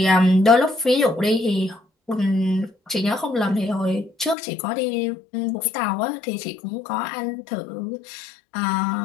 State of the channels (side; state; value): right; drops out; at 4.4 s